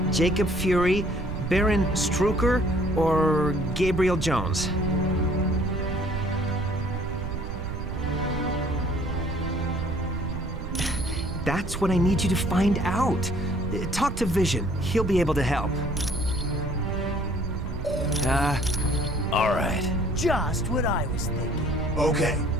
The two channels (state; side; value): noise; right; rumble, 6 dB below the sound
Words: Jacob Fury, Baron Strucker, or Gabriel Jones. That's what I need you to find out. Talk to Vision. He'll be able to help. All right. Just what I was thinking. Okay.